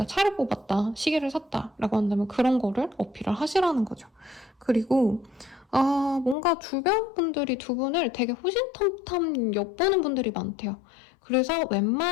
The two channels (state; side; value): drops out; right; at 6.4 s